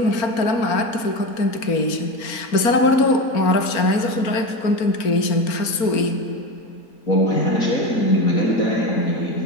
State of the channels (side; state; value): right; late; 4.4 ms